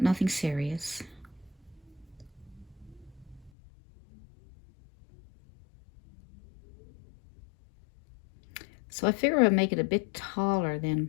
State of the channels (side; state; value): right; drops out; at 3.5 s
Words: nothing serious. So I figure I'll make it a bit taller